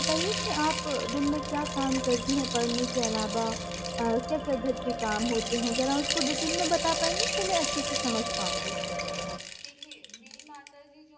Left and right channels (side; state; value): both; identical; correlation 1.00